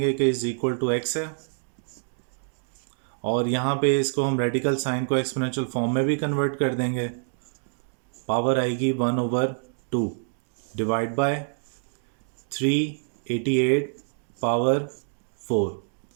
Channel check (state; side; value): silent; left; digital silence